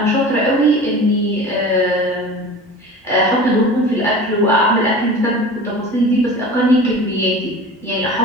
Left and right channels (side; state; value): both; normal; correlation 0.37